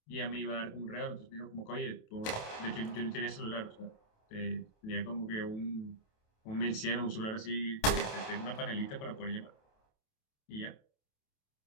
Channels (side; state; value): right; late; 28 ms